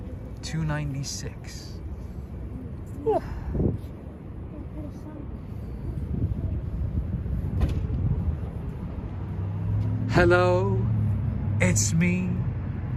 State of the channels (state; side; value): identical; both; correlation 1.00